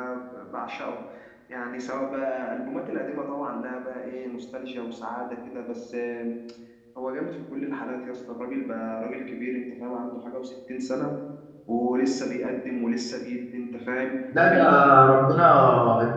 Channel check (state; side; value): identical; both; correlation 1.00